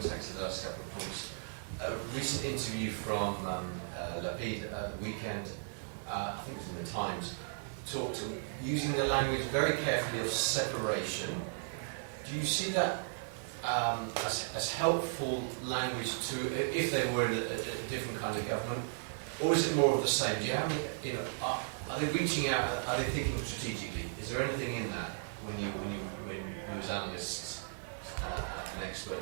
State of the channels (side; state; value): left; silent; digital silence